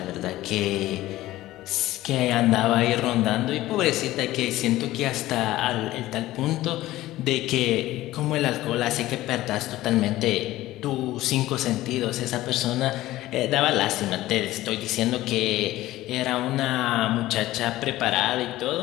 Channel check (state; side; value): quieter; right; 16.1 dB